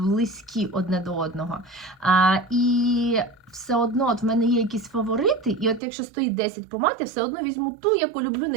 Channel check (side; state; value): left; drops out; at 5.8 s